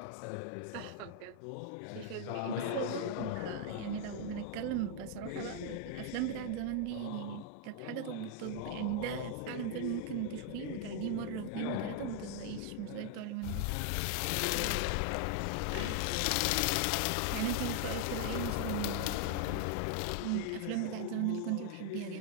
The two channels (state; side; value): different; both; correlation 0.00